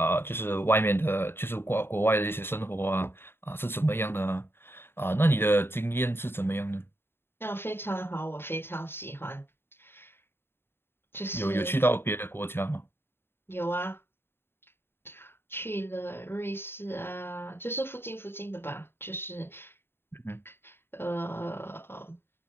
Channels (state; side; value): late; right; 0.11 ms